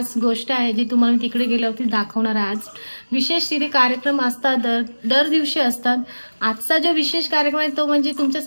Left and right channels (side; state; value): both; inverted; correlation -1.00